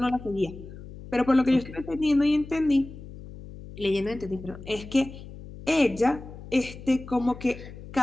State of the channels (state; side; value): noise; left; hum, 15 dB below the sound